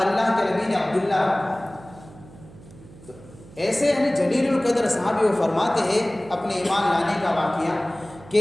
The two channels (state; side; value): noise; right; hum, 21 dB below the sound